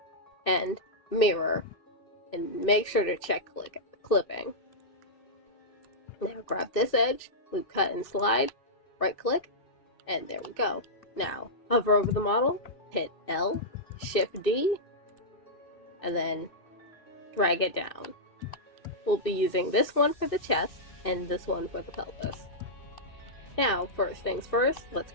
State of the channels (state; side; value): late; right; 2.6 ms